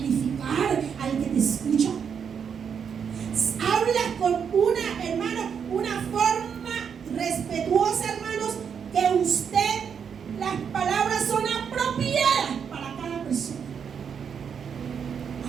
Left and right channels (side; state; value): left; quieter; 7.1 dB